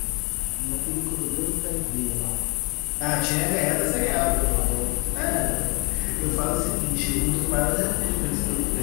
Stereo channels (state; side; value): quieter; right; 30.4 dB